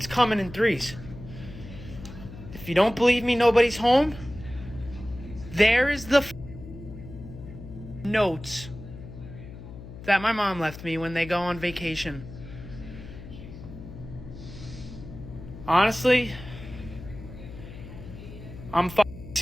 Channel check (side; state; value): left; noise; hum, 13 dB below the sound